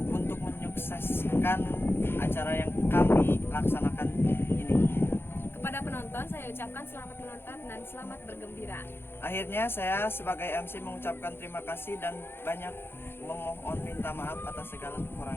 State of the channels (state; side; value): late; right; 0.11 ms